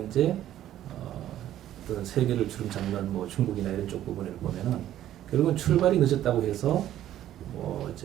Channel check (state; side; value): quieter; left; 12.4 dB